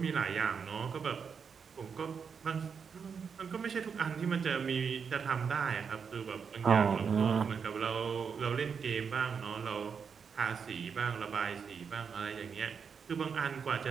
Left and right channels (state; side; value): quieter; left; 6.3 dB